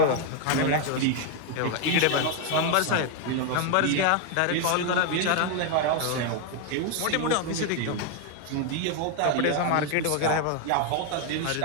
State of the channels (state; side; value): different; both; correlation 0.01